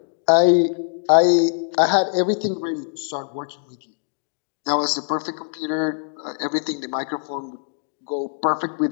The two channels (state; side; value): silent; right; digital silence